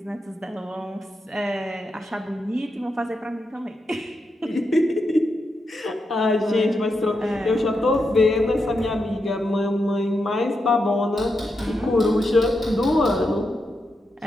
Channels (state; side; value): normal; both; correlation 0.85